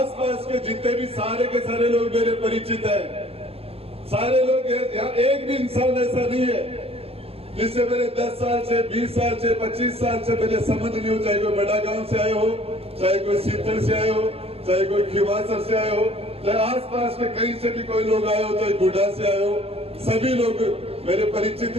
के जितने भी सारे के सारे लोग मेरे परिचित हैं, सारे लोग यहाँ, एक भी इंसान ऐसा नहीं है जिससे मेरे 10 साल से, 20 साल से, 25 साल से पहले संबंध नहीं हो, चाहे कोई बड़ा गांव से आए हो, चाहे कोई सीतर से आए हो, चाहे कोई खिवासर से आए हो, चाहे आसपास के कहीं से भी कोई लोग आए हो, चाहे गुड्डा से आए हो, सभी लोग मेरे परिचित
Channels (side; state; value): left; late; 0.29 ms